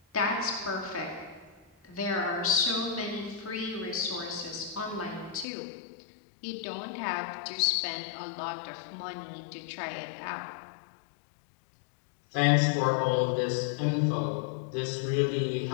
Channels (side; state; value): right; drops out; at 5.5 s